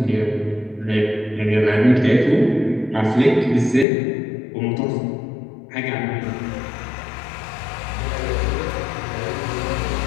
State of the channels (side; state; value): right; drops out; at 3.9 s